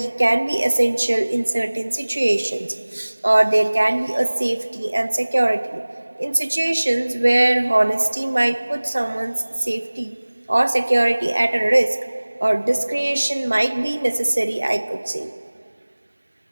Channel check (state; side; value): inverted; both; correlation -1.00